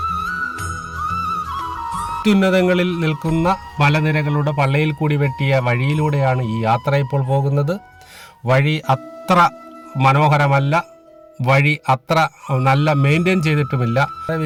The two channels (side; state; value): both; identical; correlation 1.00